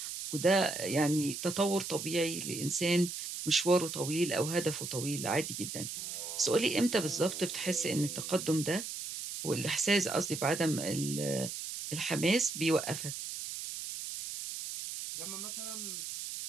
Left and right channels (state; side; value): noise; right; hiss, 6 dB below the sound